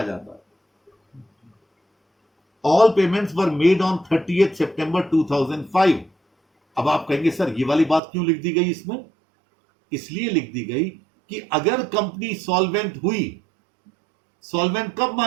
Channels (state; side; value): drops out; left; at 8.0 s